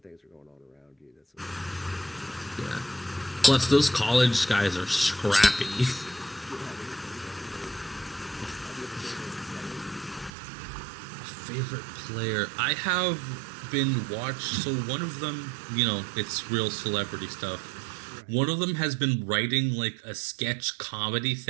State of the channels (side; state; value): left; drops out; at 10.3 s